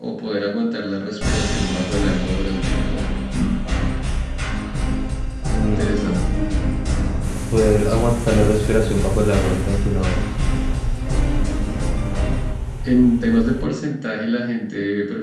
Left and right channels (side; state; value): both; identical; correlation 1.00